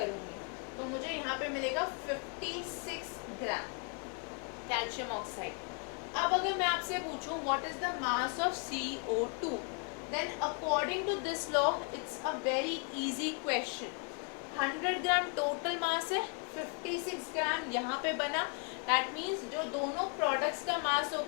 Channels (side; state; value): right; quieter; 39.1 dB